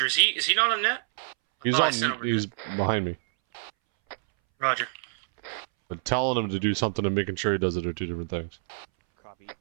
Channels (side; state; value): left; silent; 60 dB below the other